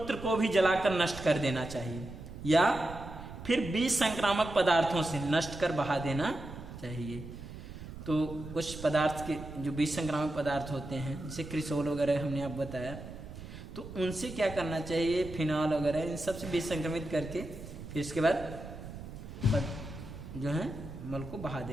को भी जलाकर नष्ट कर देना चाहिए या फिर बीज संक्रामक पदार्थों से नष्ट कर बहा देना चाहिए। तो कुछ पदार्थ के जो बीज संक्रामक पदार्थ होते हैं जैसे क्रिसोल वगैरह हमने आप बताया, तो उनसे क्या करना चाहिए, फिनॉल वगैरह इन सब से बीज संक्रमित करके फिर इसके बाद जो है मल को बहा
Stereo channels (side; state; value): right; noise; rumble, 12 dB below the sound